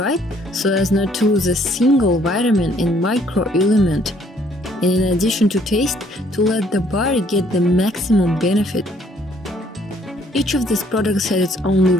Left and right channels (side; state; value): both; normal; correlation 0.64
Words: so as not to lose a single vitamin and microelement, and in addition to taste, to let the body get the maximum benefit. Each of these products has its own